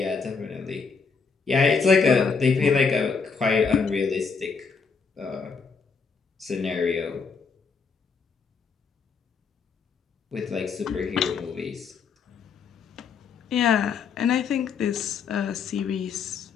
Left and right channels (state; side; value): quieter; right; 5.4 dB